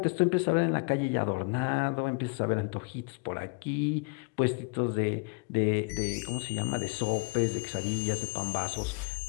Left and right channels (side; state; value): right; quieter; 31.0 dB